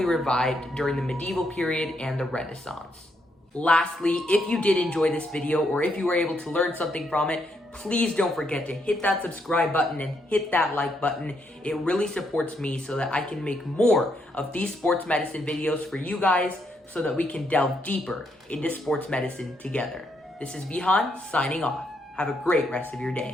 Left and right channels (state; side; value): normal; both; correlation 0.76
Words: revived during the medieval period and the Renaissance. Lastly, if you did enjoy this video, or if you were able to learn something from it, please don't forget to hit that subscribe button and hit that like button. It really supports me so that I can make more of these sports medicine videos for you guys, so that we can delve deeper into sports medicine together. This is Vihan signing off. Have a great rest of your